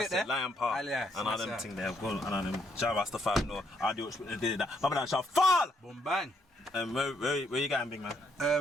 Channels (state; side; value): normal; both; correlation 0.72